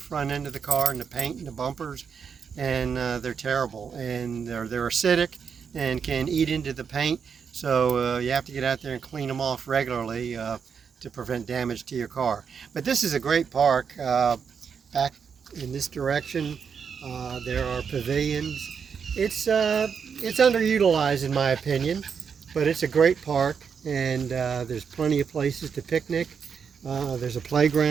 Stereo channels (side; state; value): left; quieter; 6.6 dB